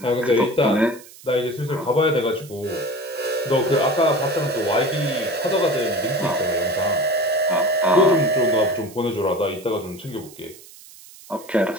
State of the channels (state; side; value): noise; right; hiss, 20 dB below the sound